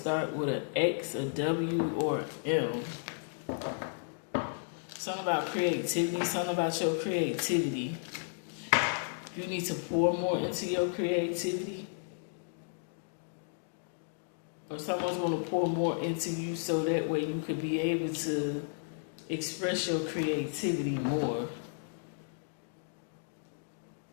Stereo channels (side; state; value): right; silent; digital silence